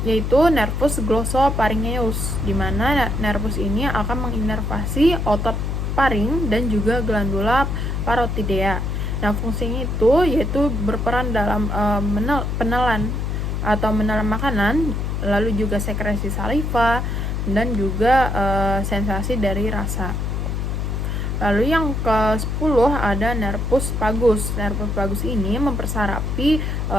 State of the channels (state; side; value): noise; left; hum, 1 dB below the sound